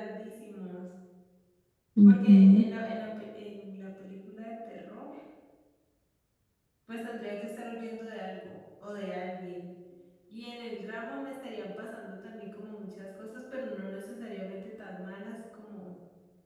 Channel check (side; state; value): both; identical; correlation 1.00